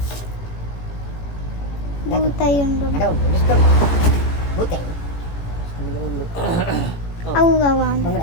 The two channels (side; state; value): right; late; 18 ms